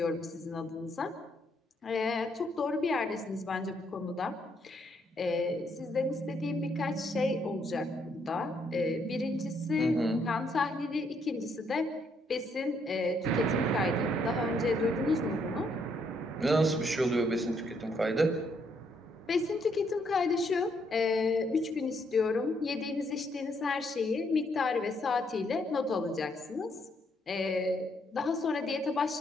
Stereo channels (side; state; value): both; normal; correlation 0.73